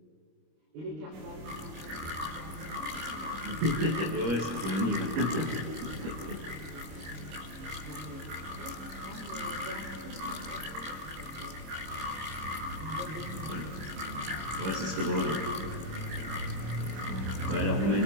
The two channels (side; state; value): left; late; 26 ms